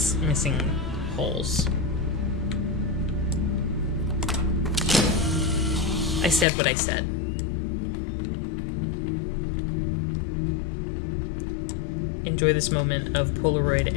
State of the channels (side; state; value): right; drops out; at 6.5 s